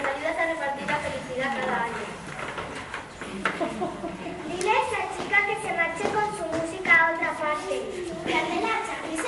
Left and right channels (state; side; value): identical; both; correlation 1.00